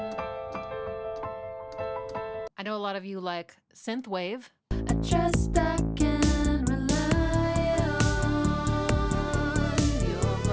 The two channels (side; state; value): both; identical; correlation 1.00